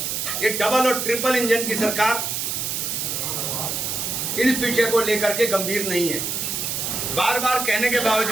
ये डबल और ट्रिपल इंजन की सरकार इस विषय को लेकर के गंभीर नहीं है। बार बार कहने के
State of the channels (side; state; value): right; noise; hiss, 2 dB below the sound